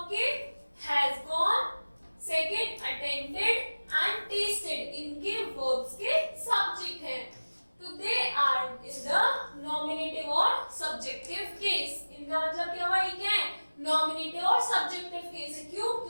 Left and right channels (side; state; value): both; inverted; correlation -1.00